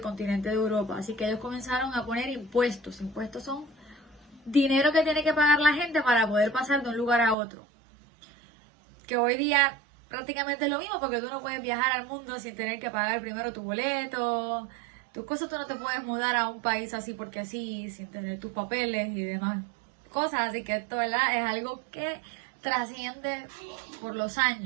continente de Europa. Así que ellos comenzaron a poner impuestos. Impuestos son dinero que tiene que pagar la gente para poder pasar de un lugar a otro. Que hoy día prácticamente es lo mismo, porque tú no puedes viajar al mundo sin tener que pagar primero tu boleto, tus cosas. Tú no te puedes mudar a un país así porque sí, sin tener tus papeles y demás cosas. Así que esto, ¿verdad?, es algo que trasciende por los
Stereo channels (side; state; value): left; drops out; at 7.4 s